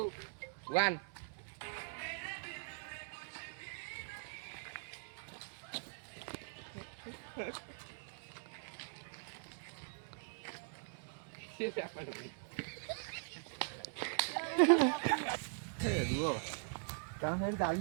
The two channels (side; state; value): left; silent; digital silence